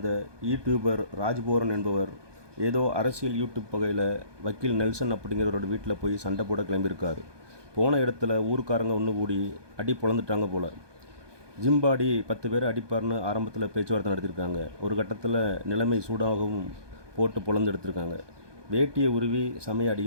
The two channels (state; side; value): late; left; 1.2 ms